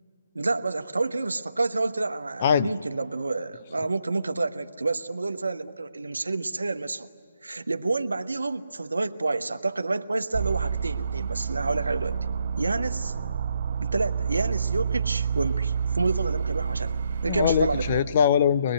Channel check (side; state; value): both; inverted; correlation -0.78